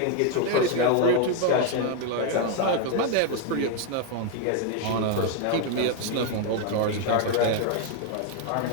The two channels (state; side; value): different; both; correlation 0.01